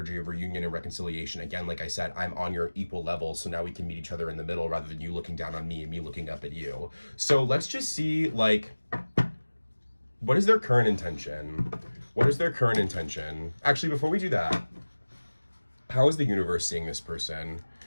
of reunion and reconciliation. Again, like I said, I'm on your equal level, so now we can meet each other in the middle rather than you looking down on me and me looking up at you. So let's just see, what is their current intention? What is their current intention? Actually, before we do that, how is the universe seeing this person?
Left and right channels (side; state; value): both; inverted; correlation -1.00